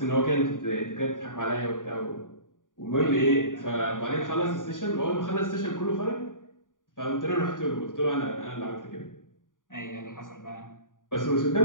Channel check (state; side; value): late; right; 0.88 ms